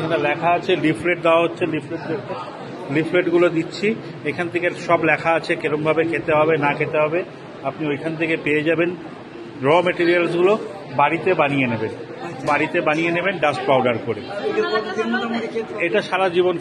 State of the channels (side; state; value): both; identical; correlation 1.00